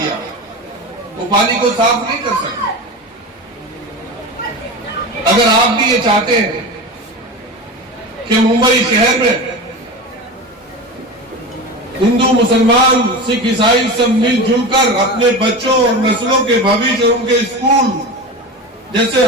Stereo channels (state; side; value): normal; both; correlation 0.27